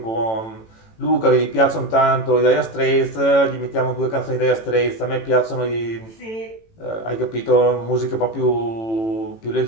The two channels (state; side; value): late; right; 18 ms